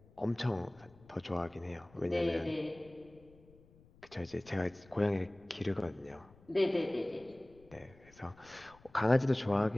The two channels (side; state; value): left; noise; rumble, 26 dB below the sound